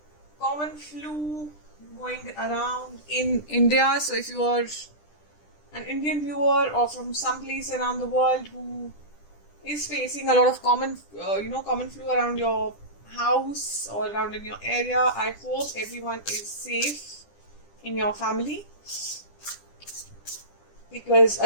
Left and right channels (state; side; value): late; right; 10 ms